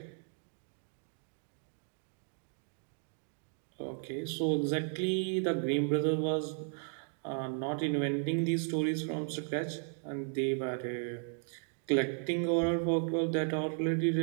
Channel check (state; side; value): silent; left; 54 dB below the other